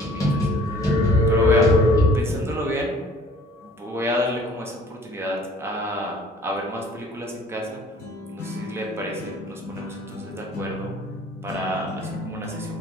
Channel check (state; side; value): normal; both; correlation 0.52